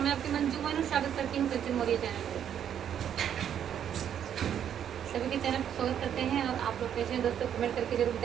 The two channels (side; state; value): left; quieter; 9.3 dB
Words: मैं आपकी मंजू मोनू स्वागत करती हूँ सचिन मौर्य चैनल पे। सभी के चैनल पर स्वागत करते हैं और आप लोग कैसे हैं दोस्तों, कमेंट करके जरूर